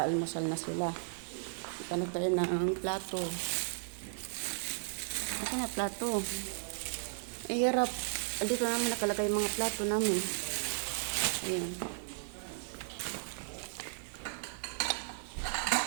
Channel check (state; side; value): silent; left; 54 dB below the other